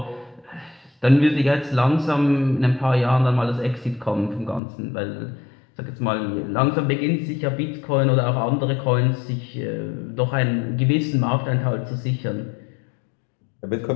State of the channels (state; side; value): drops out; right; at 4.6 s